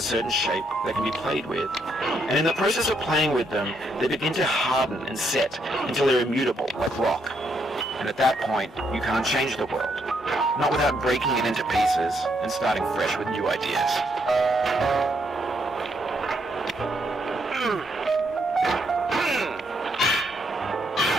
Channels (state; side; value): normal; both; correlation 0.74